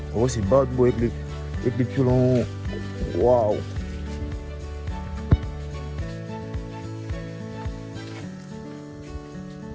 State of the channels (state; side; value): identical; both; correlation 1.00